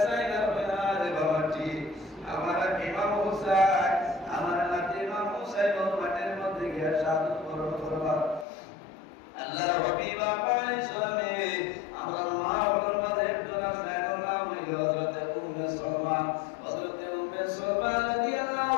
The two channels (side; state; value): right; drops out; at 8.5 s